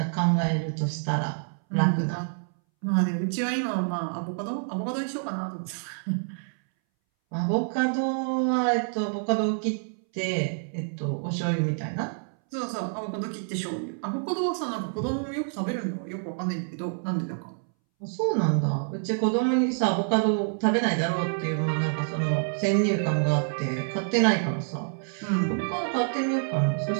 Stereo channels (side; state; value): left; silent; 60 dB below the other